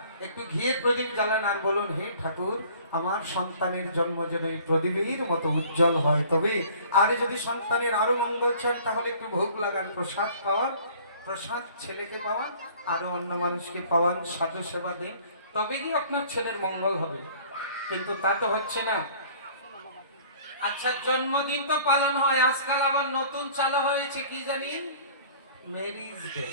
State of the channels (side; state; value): both; inverted; correlation -0.51